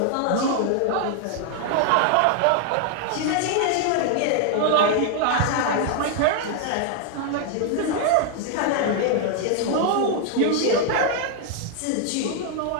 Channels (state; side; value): different; both; correlation 0.00